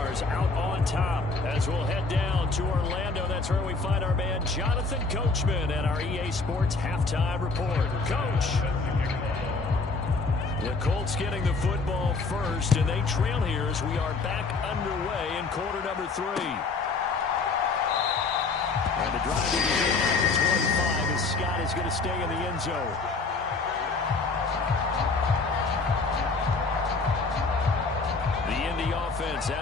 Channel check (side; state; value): right; quieter; 4.0 dB